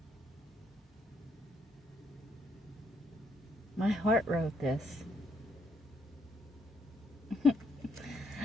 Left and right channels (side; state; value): both; normal; correlation 0.73